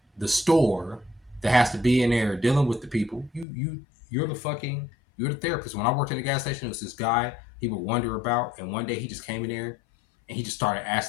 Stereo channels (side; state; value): right; drops out; at 3.5 s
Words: store that has to be in there dealing with the people. You're the therapist. When I worked at a gas station, it was this guy he would wonder about, and one day he just came in there and he just started